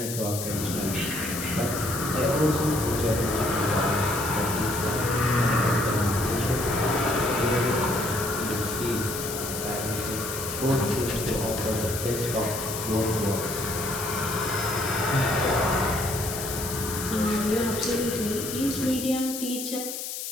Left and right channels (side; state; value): left; noise; hiss, 6 dB below the sound